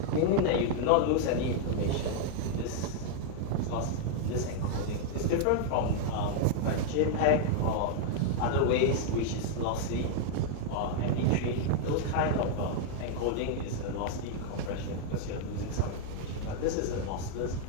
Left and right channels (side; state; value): both; different; correlation -0.01